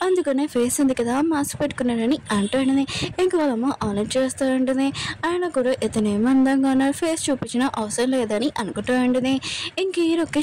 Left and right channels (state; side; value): identical; both; correlation 1.00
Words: అందుకనే ఫేస్ ఉంది కదా మాస్క్ పెట్టుకున్నాడని అంటూ ఉంటుంది ఇంక వాళ్ళమ్మ ఆలోచన చేస్తూ ఉంటుంది ఆయన కూడా ఇతను ఏమందంగా ఉన్నారు ఫేస్ చూపించిన అవసరం లేదని అనుకుంటూ ఉంటుంది ఇంక హీరోకి